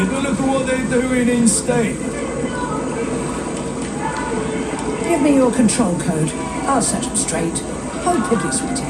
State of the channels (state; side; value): identical; both; correlation 1.00